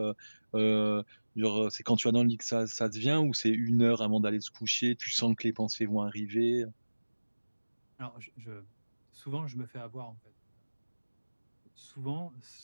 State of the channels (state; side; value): inverted; both; correlation -1.00